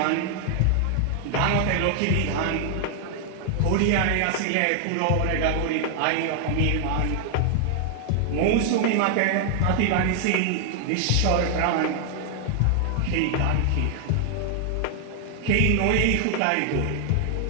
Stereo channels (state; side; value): different; both; correlation 0.00